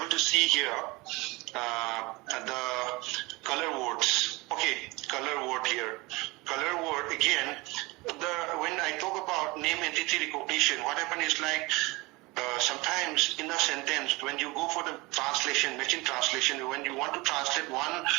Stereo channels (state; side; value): quieter; left; 23.6 dB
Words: to see here the color words. Okay, color word here. Color word again. When I talk about name entity recognition, what happens is like sometimes in a sentence, when you go for the translation, machine translation, when you want to translate one